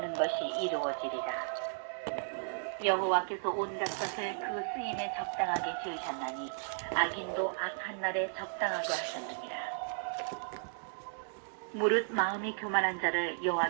것이 이루어지리라. 여호와께서 온갖 것을 그 쓰임에 적당하게 지으셨나니 악인도 악한 날에 적당하게 하셨느니라. 무릇 마음이 교만한 자를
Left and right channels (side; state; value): left; silent; digital silence